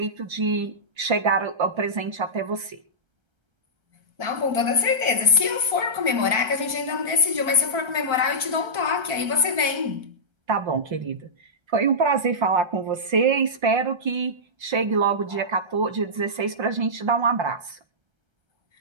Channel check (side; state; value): left; late; 1.3 ms